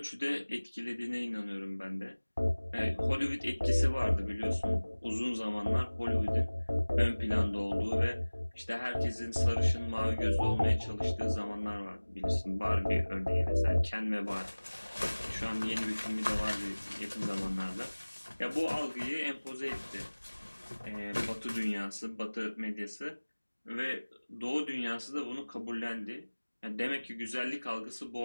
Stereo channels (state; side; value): inverted; both; correlation -1.00